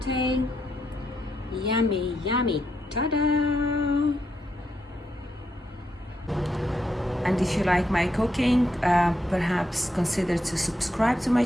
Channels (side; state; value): both; normal; correlation 0.80